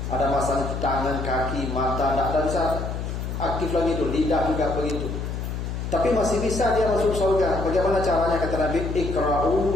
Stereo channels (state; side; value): noise; left; hum, 4 dB below the sound